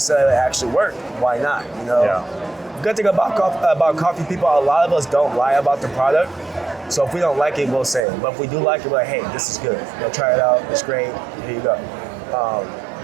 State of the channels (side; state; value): left; drops out; at 8.1 s